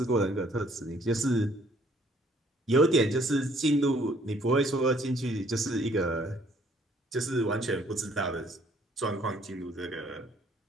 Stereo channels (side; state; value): both; normal; correlation 0.62